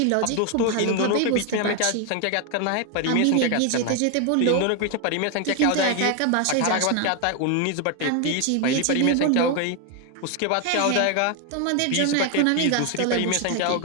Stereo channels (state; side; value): different; both; correlation 0.01